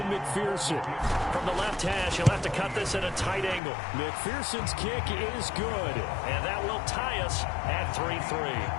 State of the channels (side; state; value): right; drops out; at 3.6 s